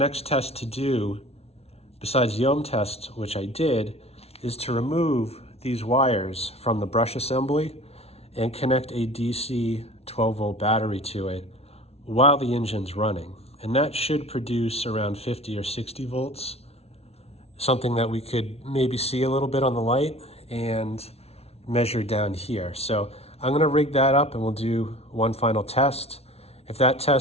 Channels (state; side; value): late; right; 0.30 ms